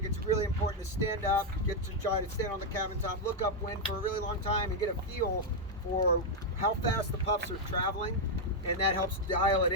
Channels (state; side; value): normal; both; correlation -0.01